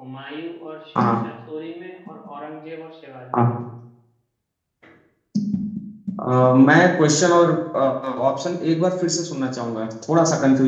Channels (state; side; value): identical; both; correlation 1.00